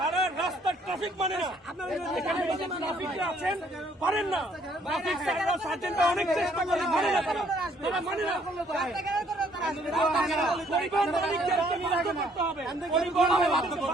রাস্তার ট্রাফিক মানে না। এখানে ট্রাফিকরা আছেন পারেন না, ট্রাফিক স্যাররা সার্জেন্টরা অনেক চেষ্টা করে, মানে না তারা মানে না। পরিবহন মালিকদের নিরাশ করতে হবে, পরিবহন বাধ্য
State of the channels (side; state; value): both; normal; correlation 0.64